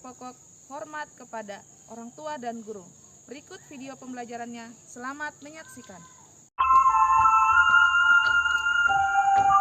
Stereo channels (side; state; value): both; identical; correlation 1.00